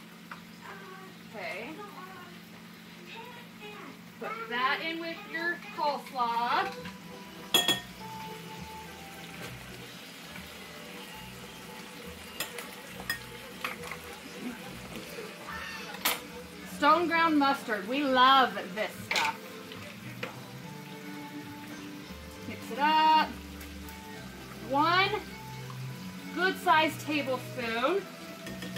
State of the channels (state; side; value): identical; both; correlation 1.00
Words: Okay. Put that in with your coleslaw. Stone ground mustard. We love this stuff. Mix it up. 1 good-sized tablespoon.